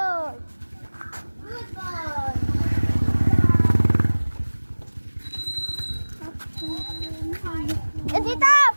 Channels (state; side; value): inverted; both; correlation -1.00